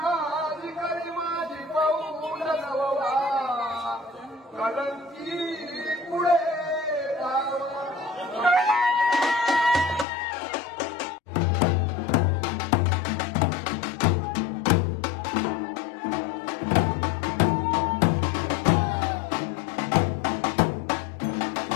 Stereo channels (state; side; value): drops out; right; at 10.1 s